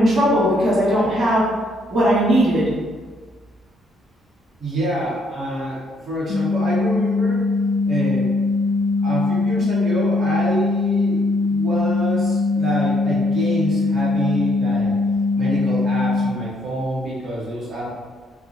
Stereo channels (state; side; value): normal; both; correlation 0.70